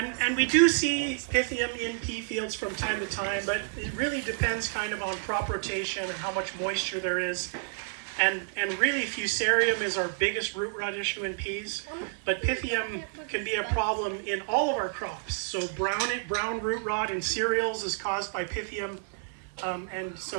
we do see Pythium in pea fields from time to time, but it really depends kind of on crop rotation and how much moisture there is. And really Fusarium is our biggest root rot issue in peas, but Pythium can be a problem in all of our crops. So brown root rot in cereals is caused by Pythium. And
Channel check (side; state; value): left; silent; 55 dB below the other